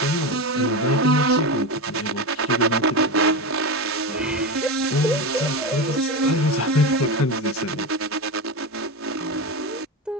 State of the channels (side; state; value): both; normal; correlation 0.18